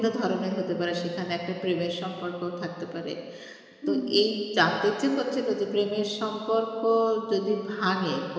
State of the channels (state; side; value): identical; both; correlation 1.00